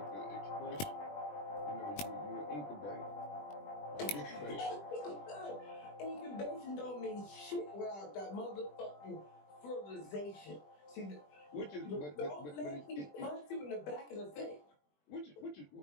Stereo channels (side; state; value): right; late; 20 ms